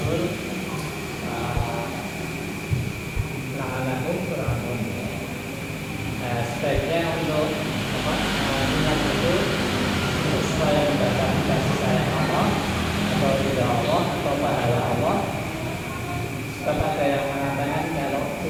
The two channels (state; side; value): identical; both; correlation 1.00